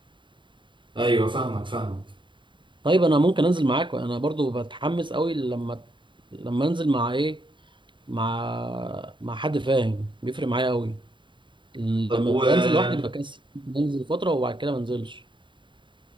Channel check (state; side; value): late; left; 0.23 ms